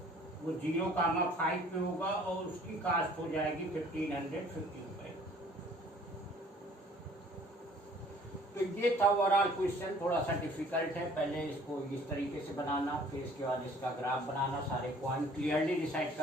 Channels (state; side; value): normal; both; correlation 0.54